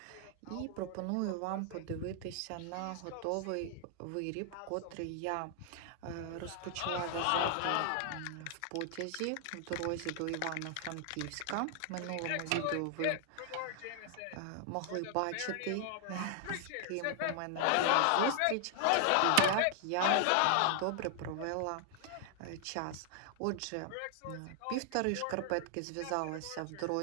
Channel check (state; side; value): different; both; correlation 0.00